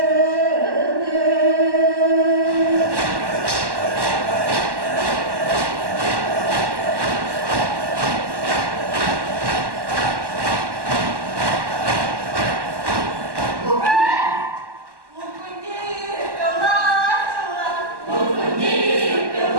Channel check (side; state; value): left; late; 1.1 ms